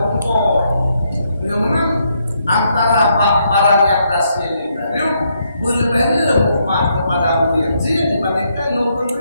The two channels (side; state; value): both; inverted; correlation -0.76